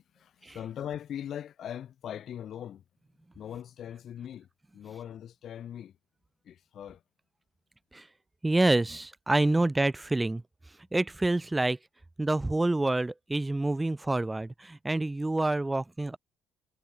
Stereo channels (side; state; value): both; normal; correlation 0.98